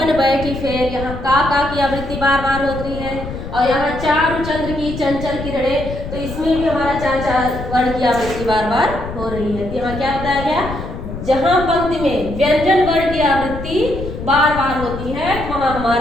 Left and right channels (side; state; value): left; noise; rumble, 8 dB below the sound